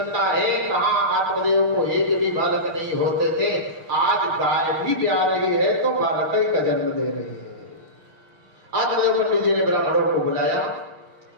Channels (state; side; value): late; left; 5.9 ms